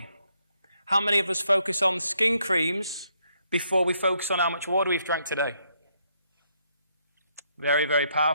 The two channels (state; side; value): inverted; both; correlation -0.74